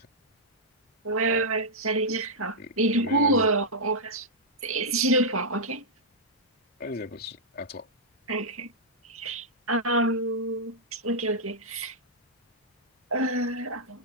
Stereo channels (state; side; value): normal; both; correlation -0.09